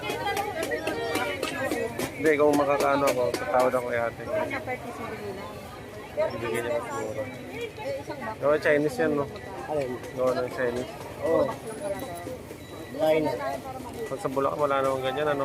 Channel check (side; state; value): both; identical; correlation 1.00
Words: Hindi, kung makakaano ako, tatawad ako kay ate. Bigyan niya mas mura. Gawa Chinese yan, no? Alin? Gawa ng Chinese. Oo. Line. Pag sa Bulacan, wala namang ganyan, ano?